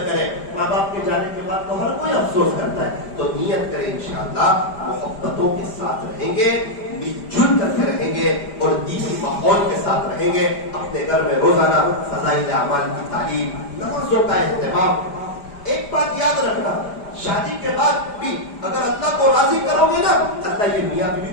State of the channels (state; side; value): late; right; 5.0 ms